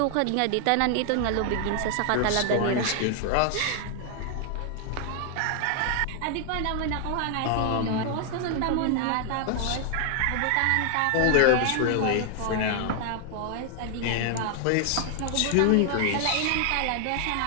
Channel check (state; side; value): different; both; correlation 0.00